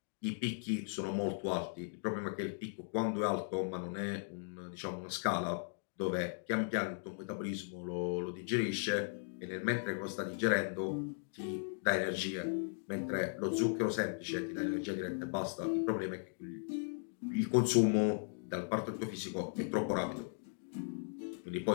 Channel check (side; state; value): right; silent; digital silence